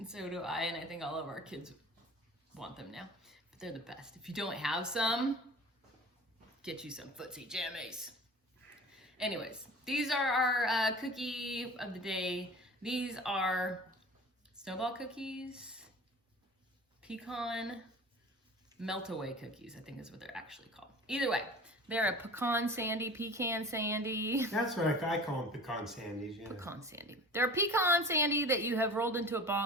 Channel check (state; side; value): normal; both; correlation 0.40